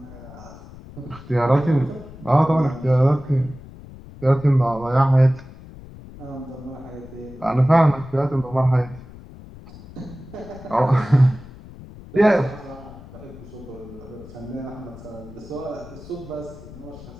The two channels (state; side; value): noise; left; rumble, 17 dB below the sound